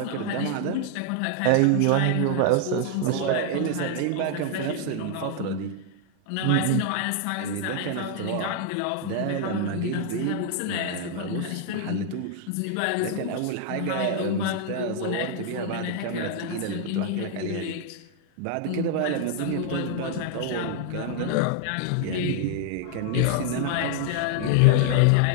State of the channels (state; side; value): different; both; correlation 0.00